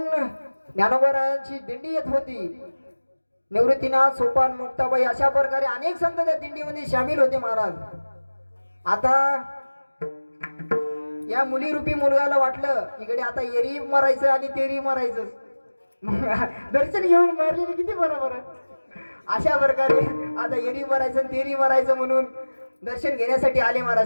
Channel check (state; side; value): inverted; both; correlation -1.00